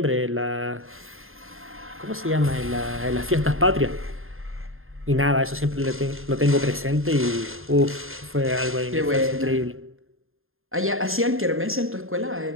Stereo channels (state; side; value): late; left; 0.61 ms